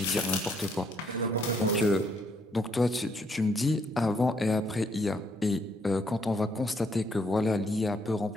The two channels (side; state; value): both; normal; correlation 0.71